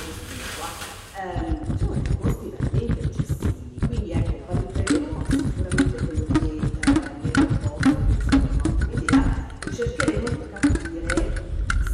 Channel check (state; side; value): identical; both; correlation 1.00